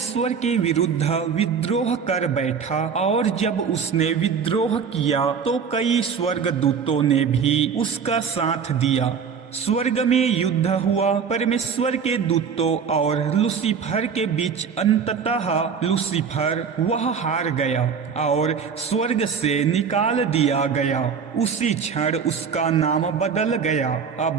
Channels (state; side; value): quieter; left; 6.4 dB